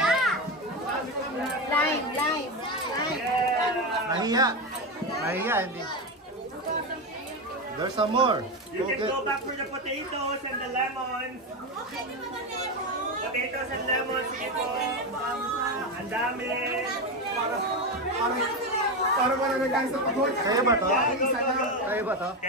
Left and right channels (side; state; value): both; normal; correlation 0.14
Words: Lime. Nahiya. Nahiya, hindi. There's some more. You can go back for the potatoes and the lemons. Potatoes and lemons, sige po. Ang dami. Para wala na guys sa pagod. Kaya ba to? Yeah, go. Kaya ba to?